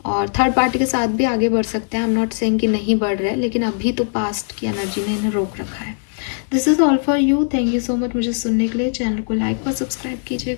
और थर्ड पार्टी के साथ भी आगे बढ़ सकते हैं, आई एम नॉट सेइंग कि नहीं बढ़ रहे, लेकिन अभी तो पास्ट की एनर्जी ने इन्हें रोक रखा है। This is all for you, thank you so much मुझे सुनने के लिए। चैनल को लाइक और सब्सक्राइब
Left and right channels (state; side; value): silent; right; digital silence